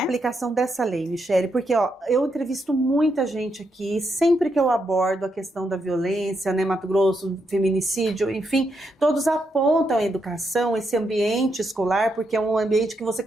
a aplicação dessa lei, Michele? Porque eu entrevisto muita gente aqui, sempre que eu abordo a questão da violência, né, Mato Grosso, feminicídio, enfim, todos apontam a educação, esse ambiente escolar, porque é um ambiente que você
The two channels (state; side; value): normal; both; correlation 0.81